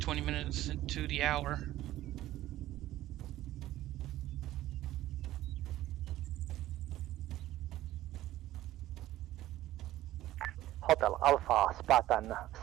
minutes into the hour. Hotel Alpha, Spartan,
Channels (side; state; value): left; quieter; 14.7 dB